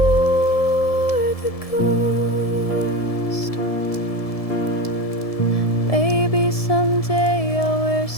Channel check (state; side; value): late; right; 1.7 ms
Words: wore the ghost. Maybe someday I'll wear